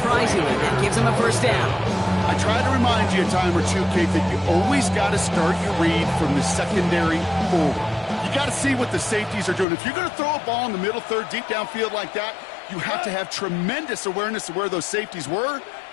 that gives him a 1st down. I try to remind you a time or two, Kate, that you always got to start your read from the secondary forward. You got to see what the safeties are doing. If you're going to throw a ball in the middle third, deep downfield like that, you have to have tremendous awareness of where those safeties were,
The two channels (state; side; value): drops out; right; at 9.7 s